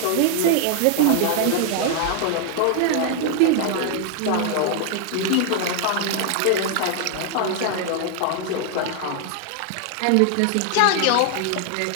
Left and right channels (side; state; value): both; different; correlation 0.00